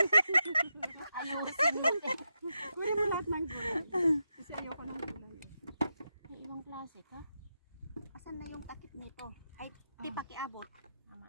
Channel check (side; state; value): both; inverted; correlation -0.86